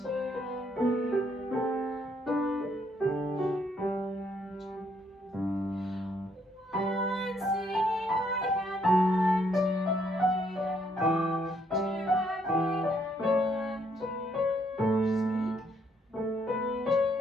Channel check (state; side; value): normal; both; correlation 0.71